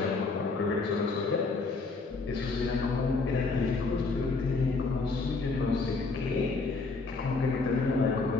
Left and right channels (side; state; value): right; quieter; 3.9 dB